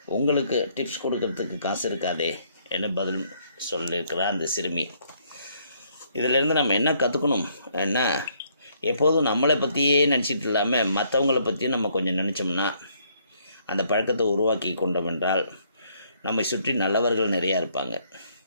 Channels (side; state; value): both; inverted; correlation -0.68